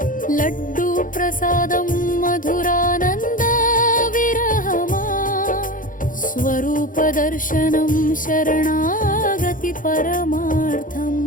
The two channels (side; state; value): right; late; 0.39 ms